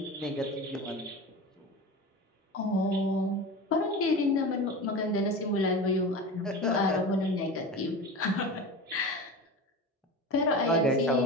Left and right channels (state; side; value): normal; both; correlation 0.29